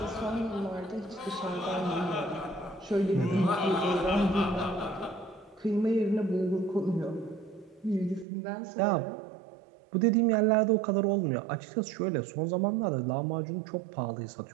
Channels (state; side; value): drops out; left; at 8.2 s